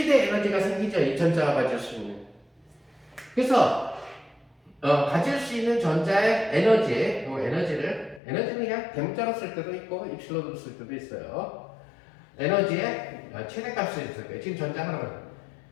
에너지가 생기죠, 이 전자가 가질 수 있는. 그래서 가질 수 있는 전자의 에너지는 그냥 대문자로 쓸 때도 있고 입실론으로 쓸 때도 있어요. 에너지의 최대값을 있을 거예요. 지금 전자 하나는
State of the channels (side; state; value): right; drops out; at 8.2 s